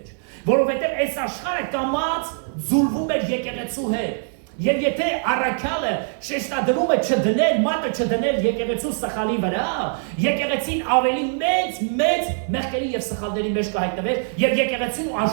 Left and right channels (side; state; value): left; silent; digital silence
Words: որովհետեւ այս աշխարհը կամած զուլվում էր եկեղեցու հետ, եւ եթե առաքյալը շեշտադրում է չդնել, մատը չդնել եկեղեցու սխալի վրա, եկեղեցին ավելի մեծ մեղքերի եւ սխալների մեջ կհայտնվեր, եւ եկեղեցին ու